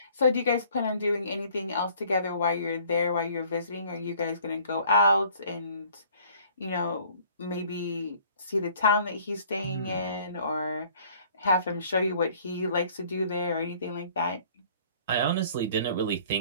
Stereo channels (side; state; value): both; inverted; correlation -0.55